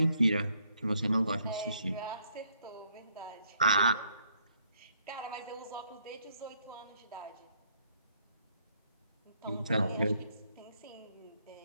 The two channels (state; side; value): inverted; both; correlation -0.69